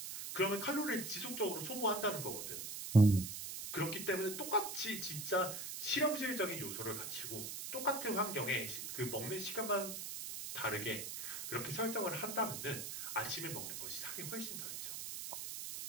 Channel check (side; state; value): right; noise; hiss, 6 dB below the sound